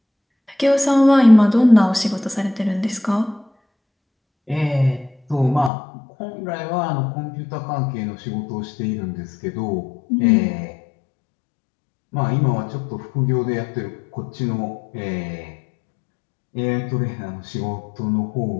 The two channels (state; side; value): drops out; right; at 5.7 s